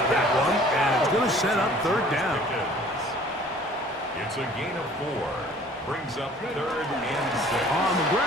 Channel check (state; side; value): normal; both; correlation 0.52